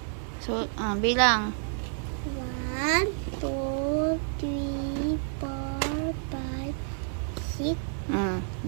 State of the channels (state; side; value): silent; left; digital silence